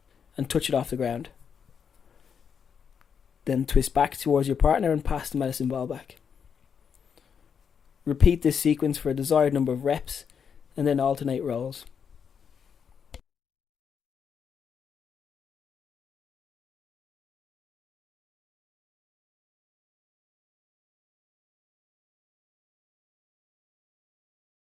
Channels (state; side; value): quieter; right; 7.0 dB